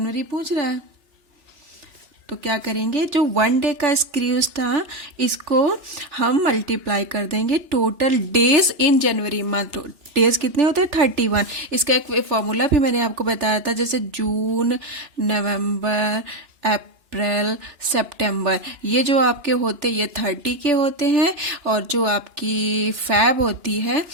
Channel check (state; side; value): late; left; 2.9 ms